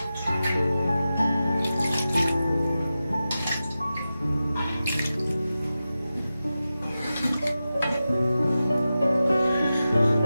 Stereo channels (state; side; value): inverted; both; correlation -0.93